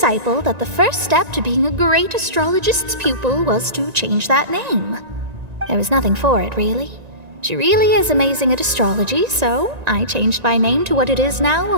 that the first step to being a great astrologist's pupil was to change that name. There was nothing for it, really. She really is amazing at astrology, so I changed my name to what it is now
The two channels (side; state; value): left; late; 1.9 ms